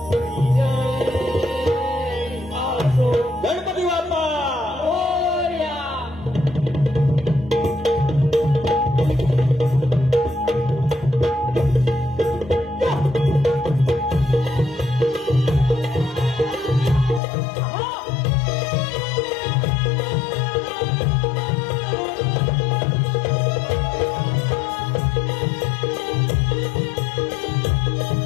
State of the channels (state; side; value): drops out; right; at 17.2 s